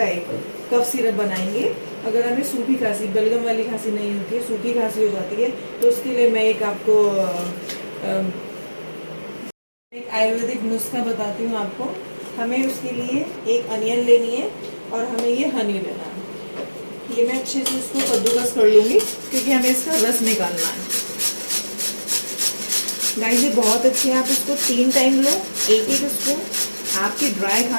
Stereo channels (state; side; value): inverted; both; correlation -1.00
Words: एक कफ सिरप बनाएंगे। अगर हमें सूखी खांसी, बलगम वाली खांसी नहीं होती है, सूखी खांसी हो जाती है, तो उसके लिए मैं एक आपको एक आयुर्वेदिक नुस्खा बताती हूँ आपको। हमें उसके लिए एक अनियन लेनी है और हमें ये हनी लेना है। ये मैं अच्छे से इसको कद्दूकस कर लूँगी क्योंकि हमें इसका रस निकालना है। गाइस ये बहुत अच्छे है, आप इसको 3 टाइम लो, एक एक स्पून, आपकी ड्राई